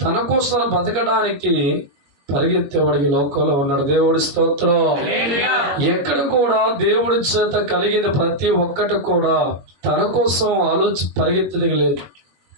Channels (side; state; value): left; late; 21 ms